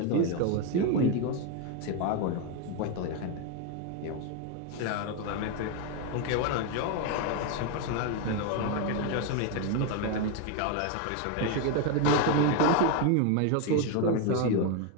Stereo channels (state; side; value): different; both; correlation 0.02